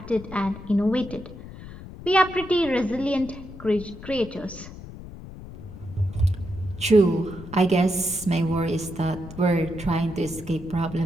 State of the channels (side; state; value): left; noise; rumble, 14 dB below the sound